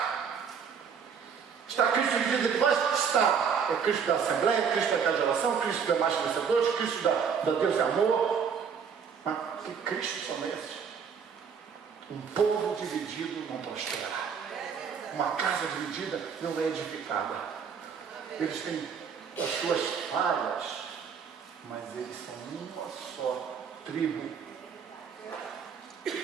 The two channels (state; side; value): quieter; left; 6.7 dB